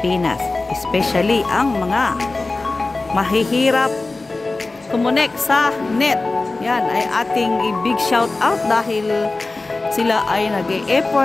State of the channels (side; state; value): right; quieter; 3.3 dB